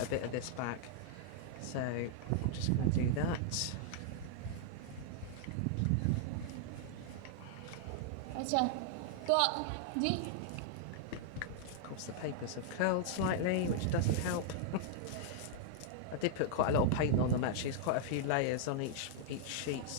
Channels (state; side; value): different; both; correlation -0.01